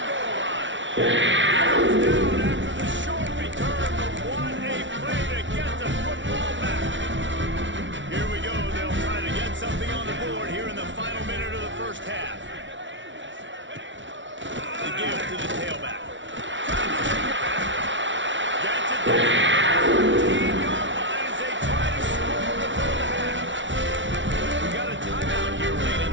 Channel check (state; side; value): late; left; 0.55 ms